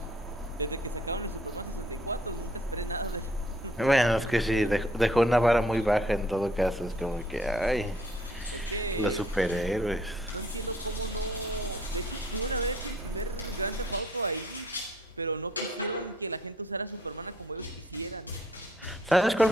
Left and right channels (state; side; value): normal; both; correlation 0.62